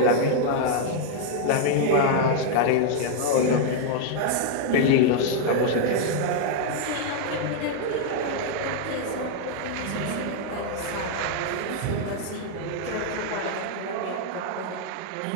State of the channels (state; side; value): different; both; correlation 0.00